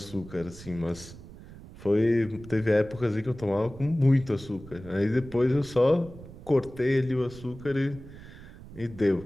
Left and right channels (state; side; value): noise; right; rumble, 17 dB below the sound